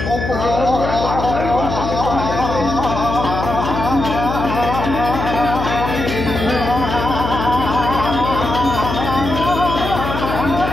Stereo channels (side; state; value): left; noise; hum, 4 dB below the sound